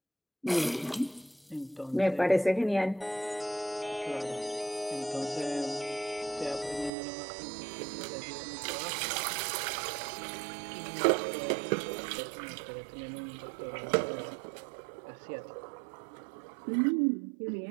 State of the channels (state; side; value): drops out; left; at 6.9 s